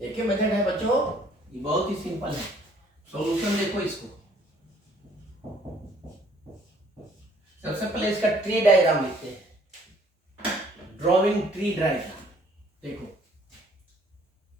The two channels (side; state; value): both; normal; correlation 0.60